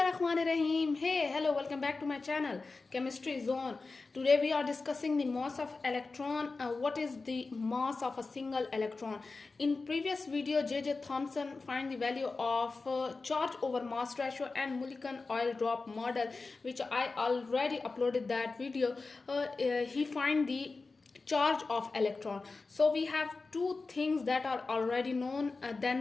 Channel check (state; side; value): quieter; right; 3.9 dB